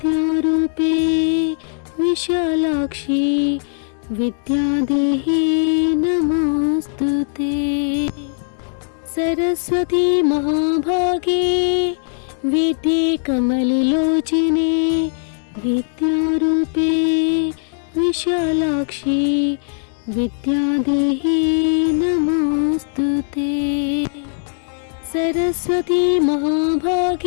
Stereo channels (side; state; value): right; silent; digital silence